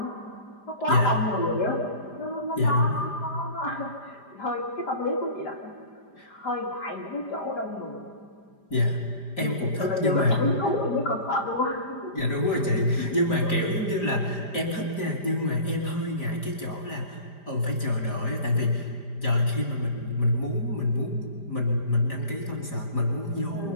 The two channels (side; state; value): right; late; 5.0 ms